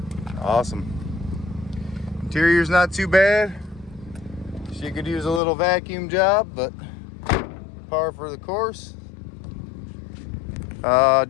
Awesome. Interior's not too bad. She could use a little vacuum job, but par for the course.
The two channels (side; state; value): right; drops out; at 5.4 s